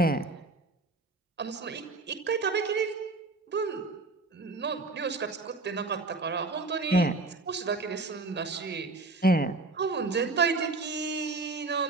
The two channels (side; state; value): left; quieter; 3.4 dB